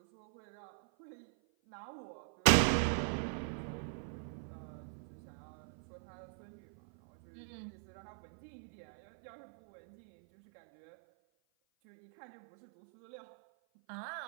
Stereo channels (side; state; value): left; silent; 51 dB below the other